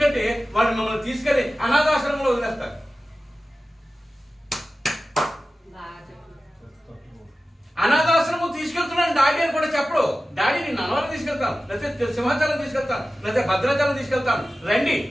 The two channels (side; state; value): both; normal; correlation 0.95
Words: వాళ్ళు మిమ్మల్ని తీసుకెళ్లి అనాథాశ్రమంలో వదిలేస్తారు. అనాథాశ్రమం తీసుకెళ్తున్నాను డాడీ అని కూడా చెప్పడు. డాడీ నేను నన్నవరం తీసుకెళ్తాను, లేకపోతే సింహాచలం తీసుకెళ్తాను, లేకపోతే భద్రాచలం తీసుకెళ్తాను, రండి.